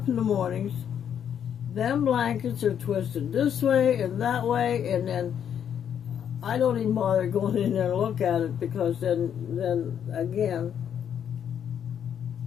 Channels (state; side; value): quieter; right; 8.8 dB